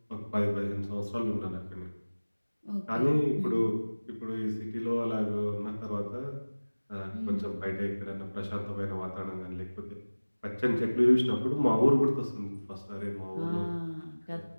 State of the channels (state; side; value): inverted; both; correlation -1.00